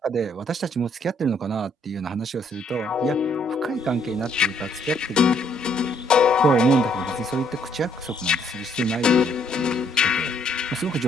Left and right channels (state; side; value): normal; both; correlation 0.68